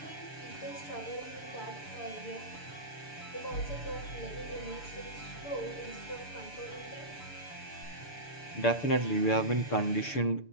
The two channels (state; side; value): late; right; 6.8 ms